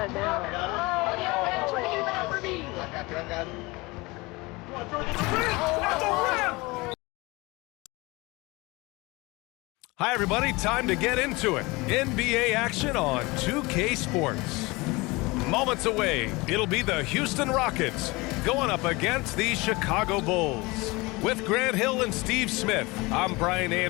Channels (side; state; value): right; quieter; 23.6 dB